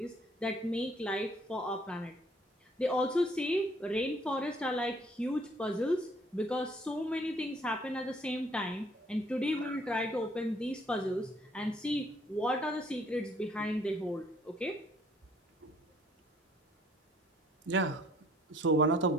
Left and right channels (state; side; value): normal; both; correlation 0.62